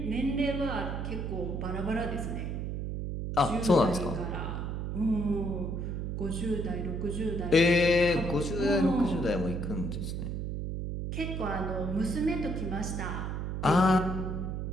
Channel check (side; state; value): right; noise; hum, 3 dB below the sound